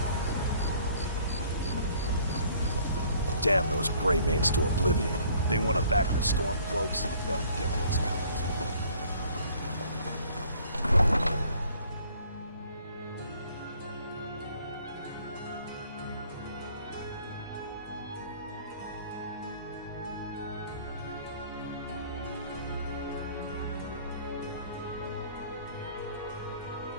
Damn those Greymanes to oblivion. They want to back the Stormcloaks. They'll get what's coming to them.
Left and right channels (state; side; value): inverted; both; correlation -0.57